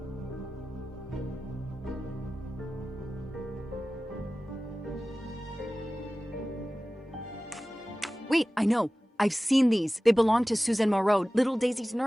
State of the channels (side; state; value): both; normal; correlation 0.96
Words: Wait, I know. I've seen these. They belong to Suzanne Moreau, little Daisy's